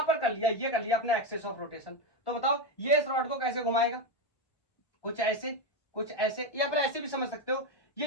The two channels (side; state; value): right; late; 1.1 ms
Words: पर कर लिया, ये कर लिया अपना एक्सेस ऑफ रोटेशन, तो बताओ ये इस रॉड को कैसे घुमाएगा, कुछ ऐसे या फिर ऐसे भी समझ सकते हो,